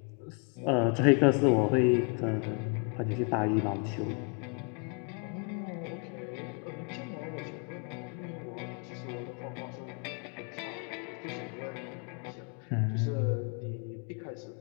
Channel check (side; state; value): right; quieter; 32.7 dB